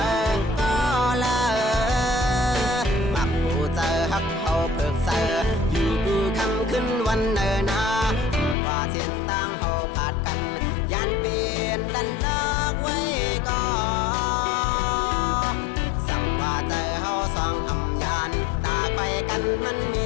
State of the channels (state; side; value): drops out; right; at 8.6 s